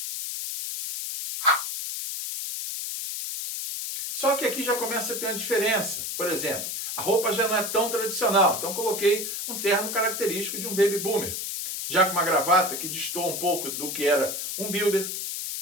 Só que aqui já começa a ter uma diferença. Por exemplo, a roupa já não é tão tradicional. Então coloquei um terno característico de um Baby Boomer. Já com uma gravata que destoa um pouco do que era um builder.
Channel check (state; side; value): noise; left; hiss, 4 dB below the sound